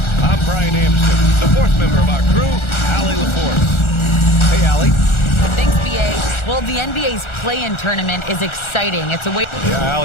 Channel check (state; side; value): late; right; 1.4 ms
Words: I'm Brian Anderson, the fourth member of our crew, Allie LaForce. Hey, Allie. Thanks, BA. Well, the NBA's play-in tournament is exciting. It's a way... Yeah,